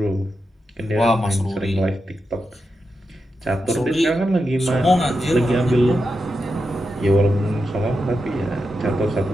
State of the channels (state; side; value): normal; both; correlation 0.88